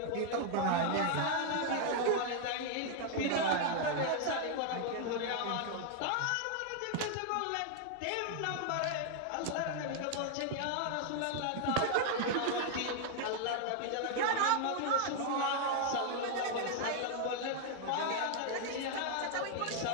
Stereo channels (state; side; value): different; both; correlation 0.00